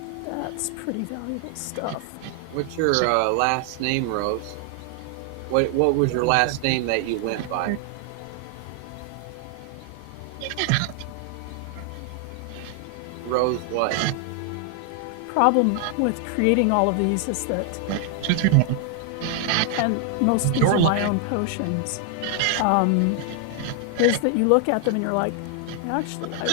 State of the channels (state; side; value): different; both; correlation 0.00